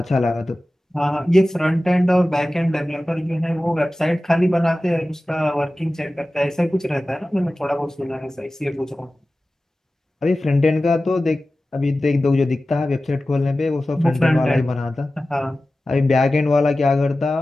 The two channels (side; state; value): both; normal; correlation 0.96